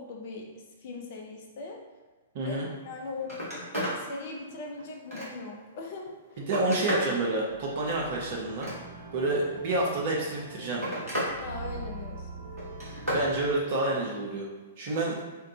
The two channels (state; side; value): inverted; both; correlation -0.32